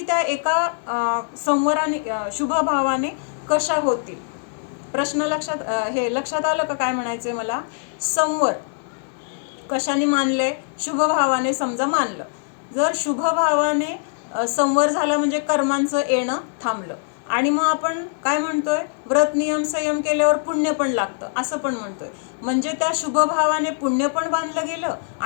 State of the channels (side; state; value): right; silent; digital silence